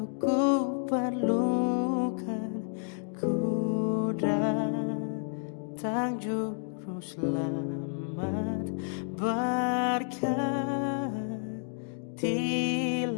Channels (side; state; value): right; silent; 58 dB below the other